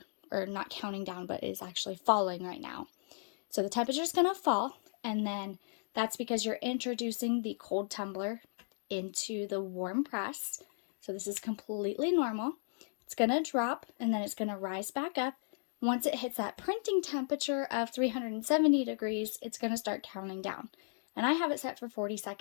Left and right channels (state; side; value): silent; right; digital silence